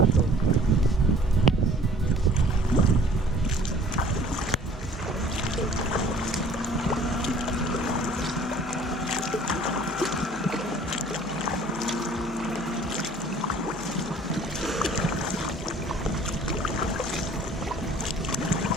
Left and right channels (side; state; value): both; normal; correlation 0.53